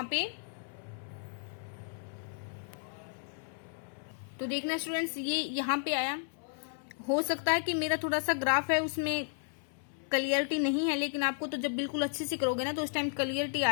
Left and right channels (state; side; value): silent; right; 55 dB below the other